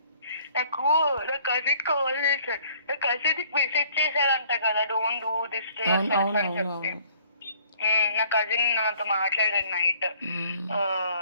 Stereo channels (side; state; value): both; inverted; correlation -0.58